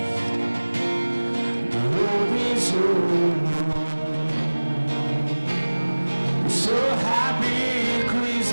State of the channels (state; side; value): inverted; both; correlation -1.00